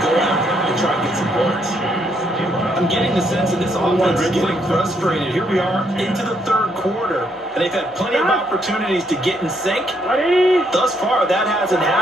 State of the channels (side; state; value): both; normal; correlation 0.73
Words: go out and try and get some points. I'm getting the sense that this offense is getting frustrated. Here we are into the 3rd quarter, and they've had plenty of opportunities to get in sync. Thus far, that hasn't